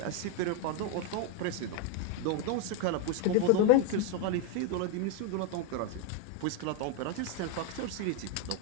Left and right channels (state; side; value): different; both; correlation 0.01